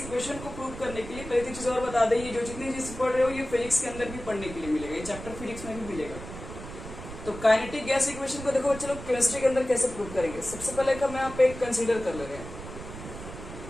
को प्रूव करने के लिए पहले चीज और बता दें, ये जो जितनी चीज पढ़ रहे हो ये फिजिक्स के अंदर भी पढ़ने के लिए मिलेगा, ये चैप्टर फिजिक्स में भी मिलेगा। तो काइनेटिक गैस इक्वेशन को देखो चलो केमिस्ट्री के अंदर कैसे प्रूव करेंगे। सबसे पहले हम यहाँ पे कंसीडर कर ले रहे हैं,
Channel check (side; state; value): right; noise; rumble, 11 dB below the sound